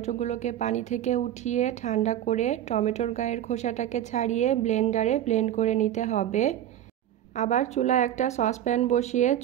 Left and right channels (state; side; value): quieter; left; 11.5 dB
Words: পানি থেকে উঠিয়ে ঠান্ডা করে টমেটোর গায়ের খোসাটাকে ছাড়িয়ে ব্লেন্ডারে ব্লেন্ড করে নিতে হবে। আবার চুলায় একটা সসপ্যান বসিয়ে